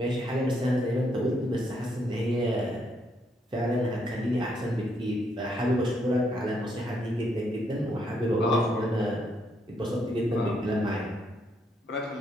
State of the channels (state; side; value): normal; both; correlation 0.74